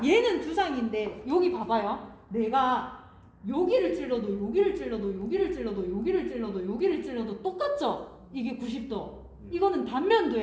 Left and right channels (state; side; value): identical; both; correlation 1.00